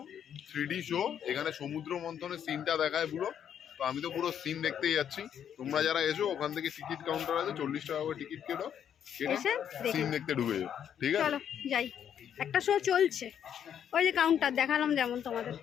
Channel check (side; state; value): right; quieter; 9.0 dB